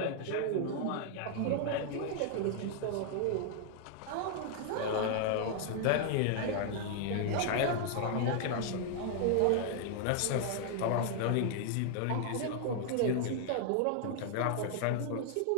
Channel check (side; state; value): both; different; correlation 0.00